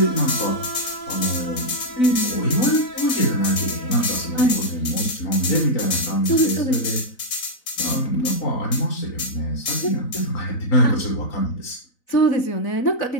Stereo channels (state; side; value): late; right; 4.0 ms